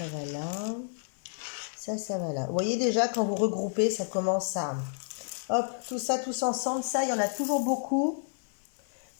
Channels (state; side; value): silent; right; digital silence